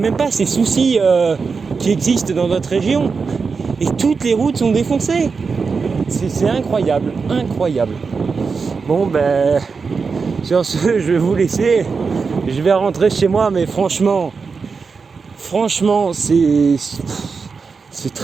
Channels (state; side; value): quieter; left; 5.0 dB